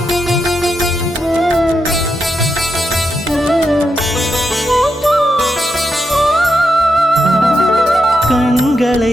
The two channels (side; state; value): both; normal; correlation 0.84